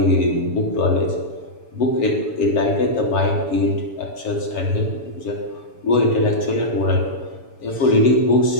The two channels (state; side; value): late; right; 7.0 ms